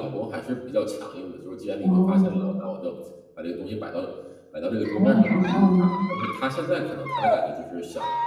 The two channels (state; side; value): identical; both; correlation 1.00